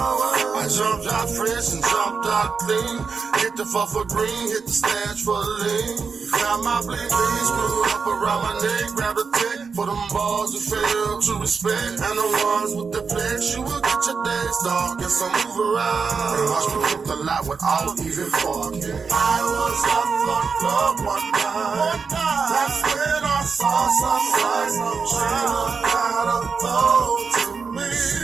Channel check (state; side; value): quieter; left; 5.3 dB